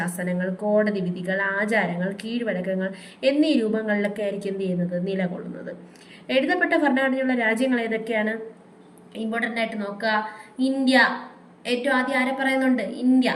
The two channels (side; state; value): both; identical; correlation 1.00